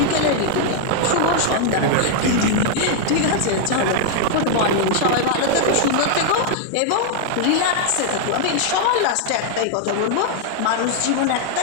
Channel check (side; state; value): both; different; correlation -0.01